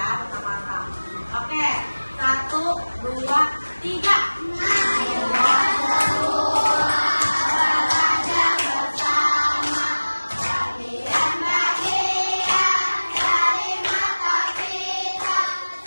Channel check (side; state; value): both; inverted; correlation -1.00